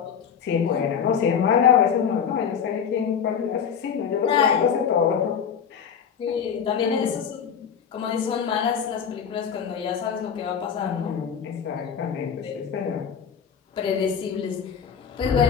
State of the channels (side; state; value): right; quieter; 7.4 dB